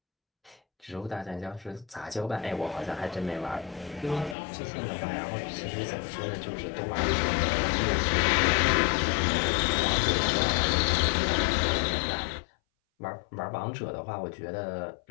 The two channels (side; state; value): right; drops out; at 4.4 s